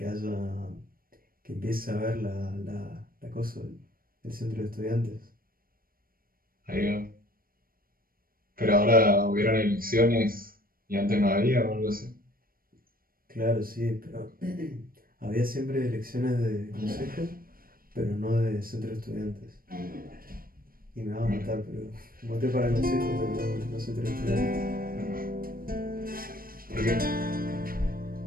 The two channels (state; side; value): late; left; 0.42 ms